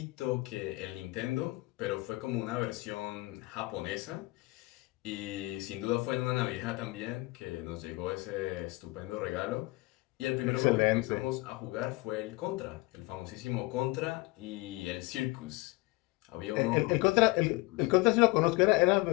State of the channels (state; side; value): quieter; right; 22.4 dB